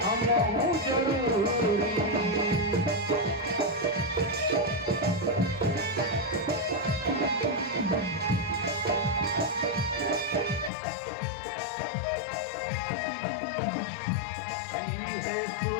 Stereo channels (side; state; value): right; drops out; at 10.7 s